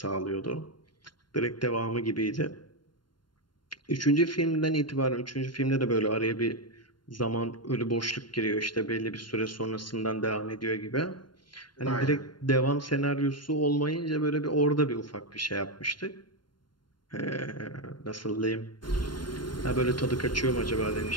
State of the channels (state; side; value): late; right; 0.72 ms